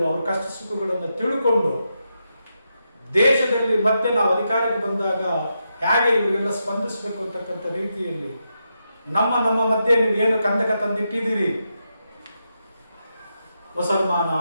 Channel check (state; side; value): inverted; both; correlation -0.85